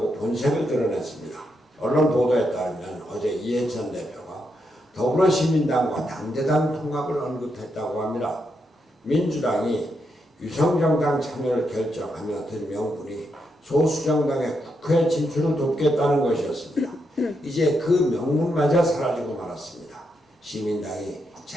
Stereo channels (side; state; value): both; normal; correlation 0.81